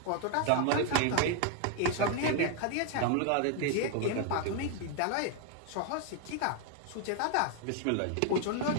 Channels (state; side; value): different; both; correlation 0.00